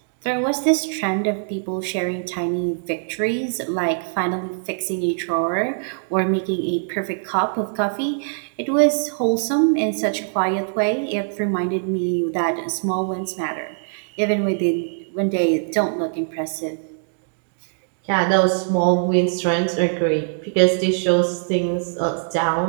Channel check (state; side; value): silent; left; digital silence